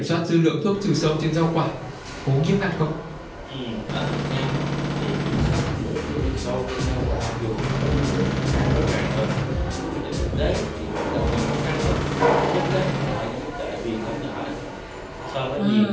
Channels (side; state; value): both; identical; correlation 1.00